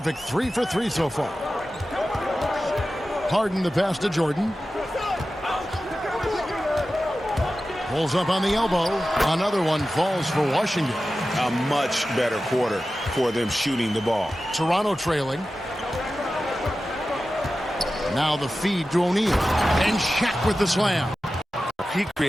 3 for 3 so far. Harden the pass to Jordan. Pulls up on the elbow. Another one falls for Washington. A much better quarter for them shooting the ball. Toronto trailing. Now the feed to O'Neal. And Shaq with the slam. He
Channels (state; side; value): normal; both; correlation 0.94